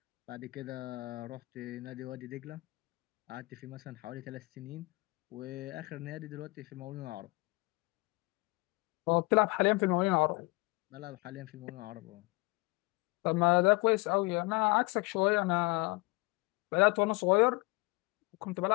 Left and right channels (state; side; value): quieter; right; 24.3 dB